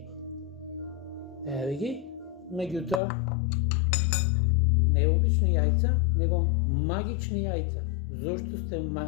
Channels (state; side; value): drops out; right; at 3.0 s